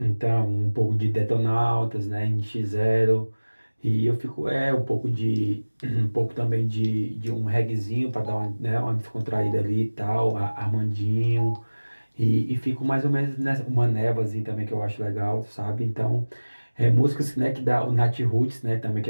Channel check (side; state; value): both; inverted; correlation -1.00